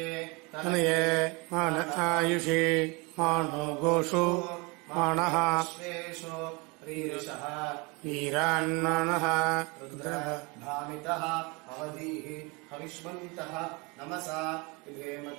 தனையே மான ஆயுஷி மானோ கோஷு மானஹ வீரான்மானஹ भामितः अवधीः हविष्मन्तः नमसा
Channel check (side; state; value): left; quieter; 28.0 dB